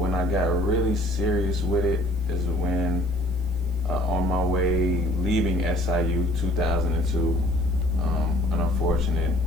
I got really serious with it is when on my way leaving SIU 2002, an unfortunate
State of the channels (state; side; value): noise; left; hiss, 30 dB below the sound